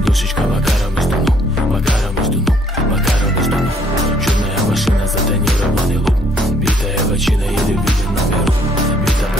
Макаром сдунул. Макаром сдунул. Макаром сдунул. Черная машина, затонированный лук. Битая бочина или виден номерок. Бита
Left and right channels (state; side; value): normal; both; correlation 0.64